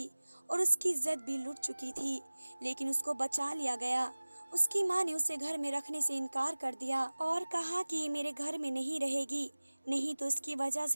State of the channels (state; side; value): inverted; both; correlation -1.00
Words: और उसकी इज्जत भी लुट चुकी थी, लेकिन उसको बचा लिया गया। उसकी माँ ने उसे घर में रखने से इनकार कर दिया और कहा कि ये मेरे घर में नहीं रहेगी, नहीं तो इसकी वजह